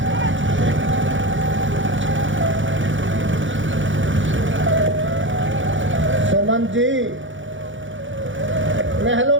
सुमन जी, महलों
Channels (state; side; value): late; left; 0.56 ms